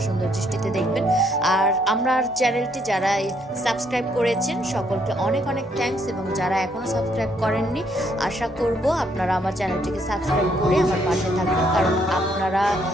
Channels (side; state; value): both; normal; correlation 0.70